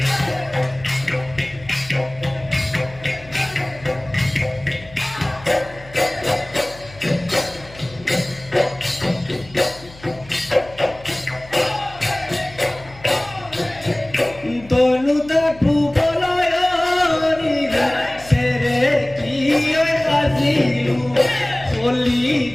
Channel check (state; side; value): noise; left; hum, 20 dB below the sound